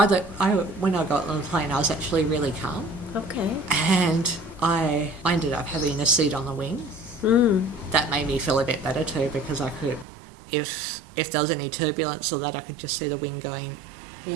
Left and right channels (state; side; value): drops out; left; at 10.1 s